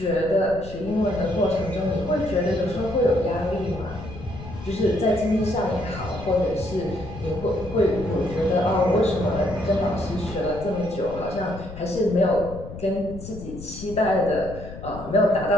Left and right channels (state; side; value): noise; left; rumble, 13 dB below the sound